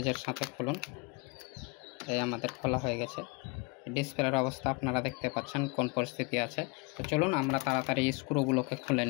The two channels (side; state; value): right; quieter; 28.3 dB